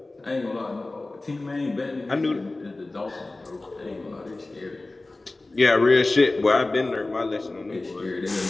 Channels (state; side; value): quieter; right; 3.0 dB